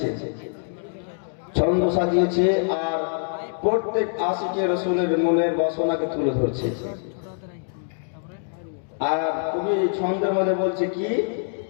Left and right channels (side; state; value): right; silent; digital silence